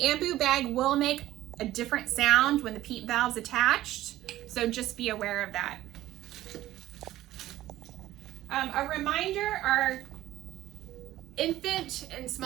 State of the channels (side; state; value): left; quieter; 14.8 dB